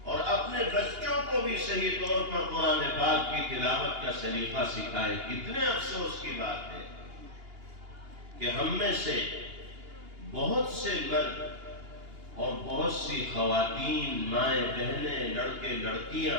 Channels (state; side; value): late; left; 2.8 ms